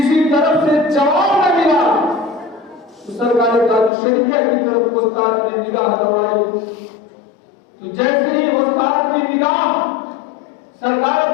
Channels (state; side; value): drops out; right; at 3.9 s